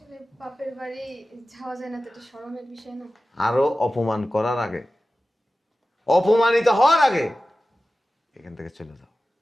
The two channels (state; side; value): normal; both; correlation 0.95